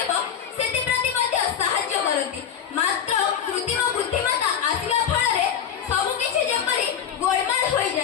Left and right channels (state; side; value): quieter; right; 8.4 dB